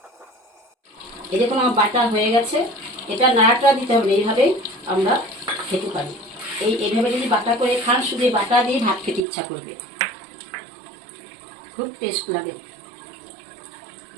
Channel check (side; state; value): left; drops out; at 9.2 s